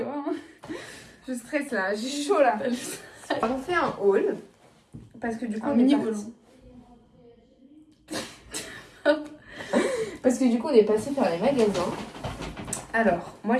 hein. Je stresse là, j'ai chaud là. On fait un haul. Parce que du coup, on est parti. Parce que du coup, on est passé faire les magasins. Alors, moi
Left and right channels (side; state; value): both; identical; correlation 1.00